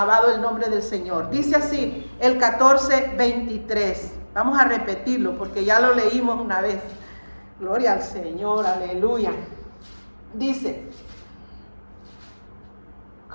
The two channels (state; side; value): inverted; both; correlation -1.00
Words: el nombre del Señor. Dice así, el 14, 23. Vamos a repetirlo porque ya lo leímos una vez. Gloria al Señor, aleluya. Dice,